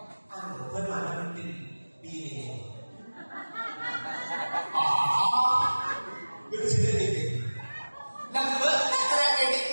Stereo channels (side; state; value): both; inverted; correlation -1.00